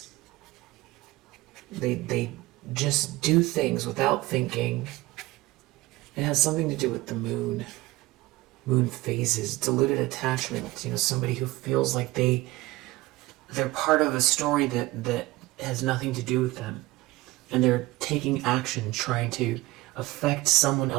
They just do things without thinking. It has something to do with the moon. Moon phases, diluted attachment. Somebody who feels like they're part of a story that has nothing to do with them. And they're taking action, trying to affect someone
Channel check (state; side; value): quieter; left; 19.4 dB